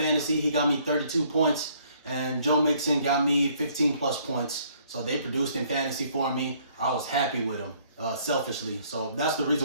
He got me 32 points, and Joe Mixon got me 15 plus points. So they produced in fantasy for me. I was happy with them, selfishly. So that's the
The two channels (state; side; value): inverted; both; correlation -0.63